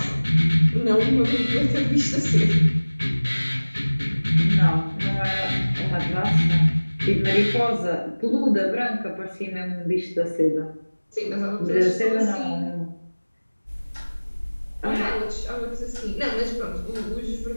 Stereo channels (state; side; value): inverted; both; correlation -1.00